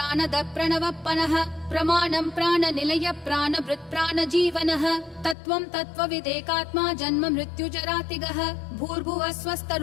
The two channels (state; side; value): drops out; right; at 5.4 s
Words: प्रणवप्पनः प्रमाणं प्राणनिलय प्राणभृत् प्राणजीवनः तत्त्वं तत्त्वविदेकात्मा जन्म मृत्युजरातिगः भूर्भुवः